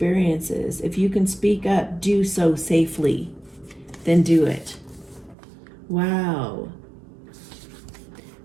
if you can speak up, do so safely. Then do it. Wow.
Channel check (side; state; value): left; drops out; at 5.4 s